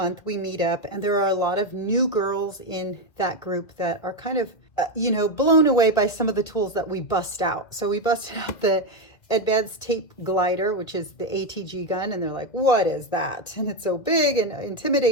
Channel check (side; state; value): right; late; 2.1 ms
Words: we meet up and there are a lot of new girls in that group that are kind of, blown away by some of the tools that we bust out. So we busted out the advanced tape glider, which is the ATG gun, and they're like, what is that? And it's so big and